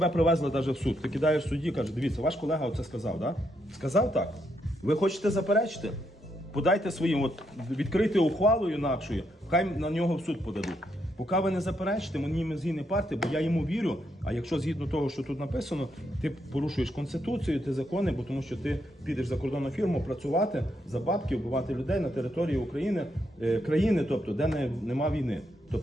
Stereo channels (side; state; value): both; normal; correlation 0.78